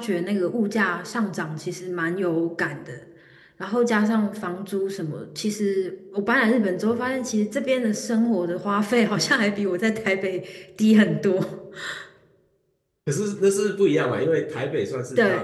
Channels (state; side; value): identical; both; correlation 1.00